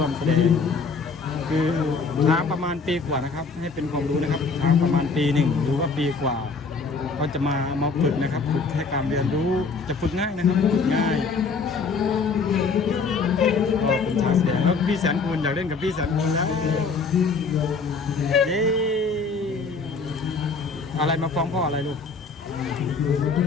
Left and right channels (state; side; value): quieter; right; 4.5 dB